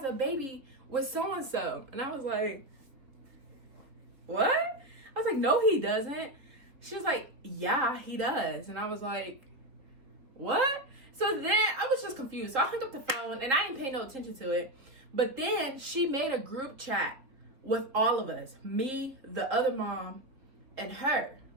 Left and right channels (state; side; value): late; left; 3.5 ms